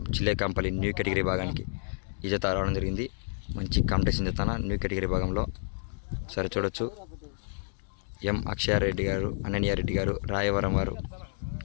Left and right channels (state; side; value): silent; right; digital silence